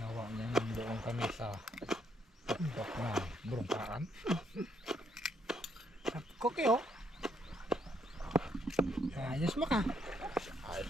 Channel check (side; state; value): both; normal; correlation 0.73